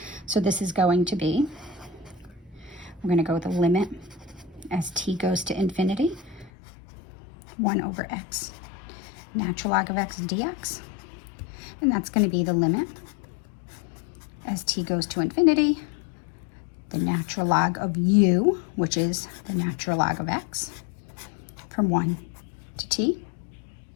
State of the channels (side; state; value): right; drops out; at 6.5 s